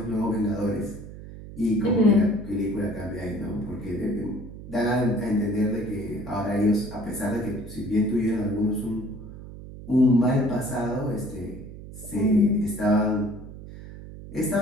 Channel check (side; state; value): right; noise; hum, 14 dB below the sound